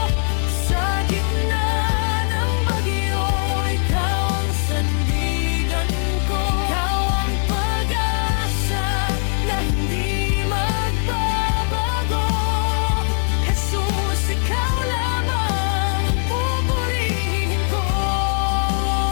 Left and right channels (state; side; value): silent; right; 65 dB below the other